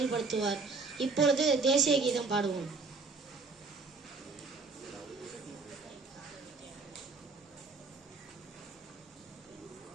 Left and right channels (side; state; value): left; quieter; 4.1 dB